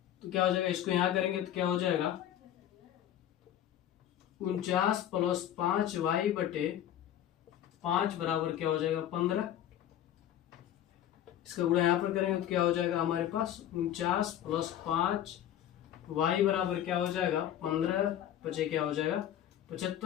तो क्या हो जाएगा, इसको यहां करेंगे तो क्या हो जाएगा 49 प्लस 5y बटे 5 बराबर क्या हो जाएगा 15। इसका गुणा यहाँ पर करेंगे तो क्या हो जाएगा हमारे पास 49 प्लस 5y बराबर क्या हो जाएगा 15 बचे क्या हो जाएगा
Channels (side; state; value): right; quieter; 11.3 dB